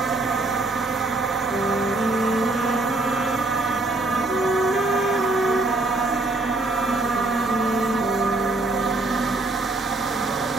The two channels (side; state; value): left; quieter; 3.1 dB